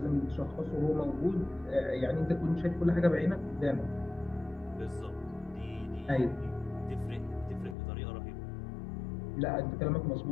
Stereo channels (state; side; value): drops out; right; at 7.8 s